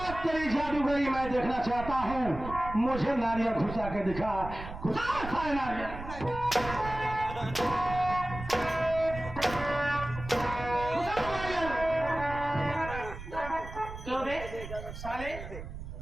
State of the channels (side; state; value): right; noise; rumble, 10 dB below the sound